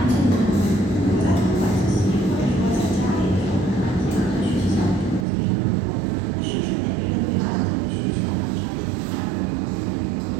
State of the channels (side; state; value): left; drops out; at 5.2 s